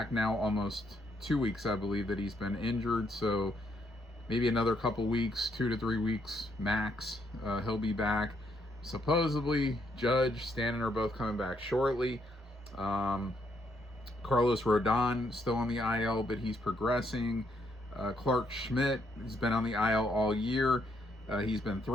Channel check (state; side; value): normal; both; correlation 0.74